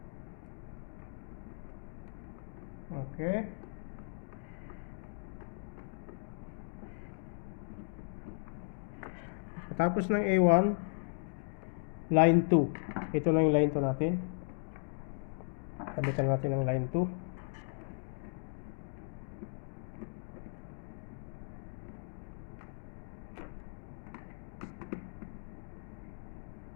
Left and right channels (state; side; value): silent; right; digital silence